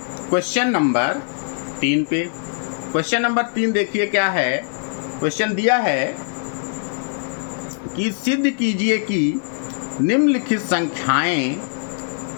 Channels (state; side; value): silent; right; 65 dB below the other